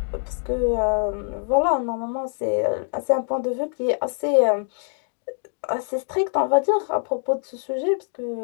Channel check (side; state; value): right; silent; 62 dB below the other